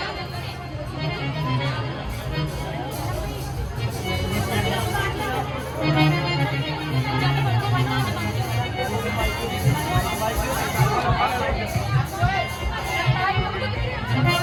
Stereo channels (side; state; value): both; identical; correlation 1.00